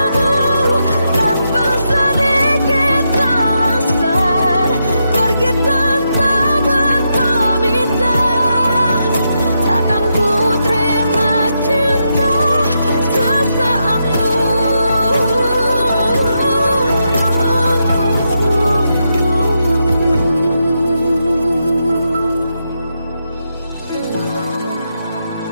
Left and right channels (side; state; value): both; inverted; correlation -0.83